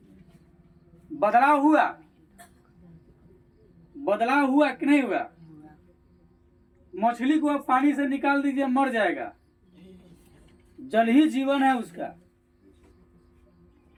बदलाव हुआ, बदलाव हुआ कि नहीं हुआ? मछली को आप पानी से निकाल दीजिए, मर जाएगा। जल ही जीवन है उसका,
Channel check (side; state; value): both; identical; correlation 1.00